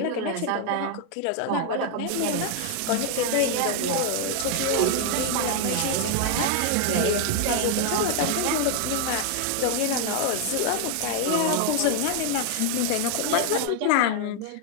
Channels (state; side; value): different; both; correlation 0.00